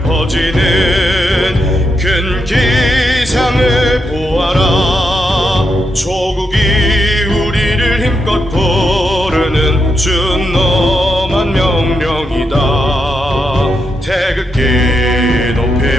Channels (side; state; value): both; normal; correlation 0.83